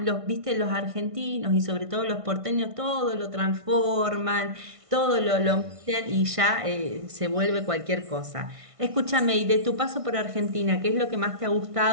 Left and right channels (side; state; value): left; late; 1.5 ms